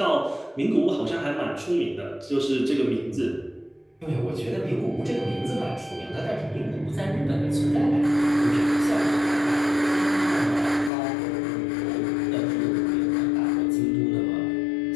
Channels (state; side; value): drops out; right; at 10.9 s